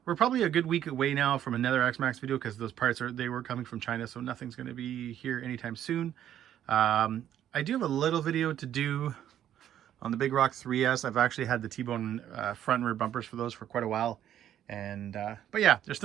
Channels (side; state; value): left; quieter; 10.9 dB